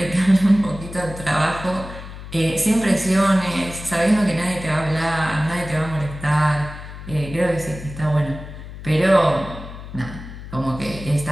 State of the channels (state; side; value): noise; left; hum, 12 dB below the sound